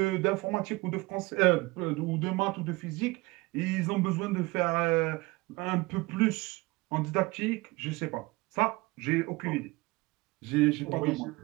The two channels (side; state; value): left; quieter; 22.9 dB